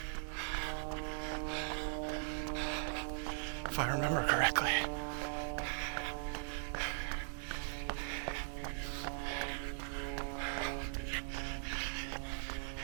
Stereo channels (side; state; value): left; silent; digital silence